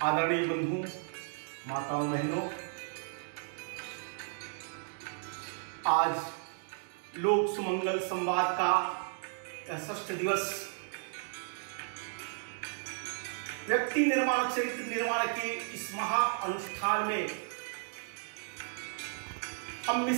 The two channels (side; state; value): left; silent; 55 dB below the other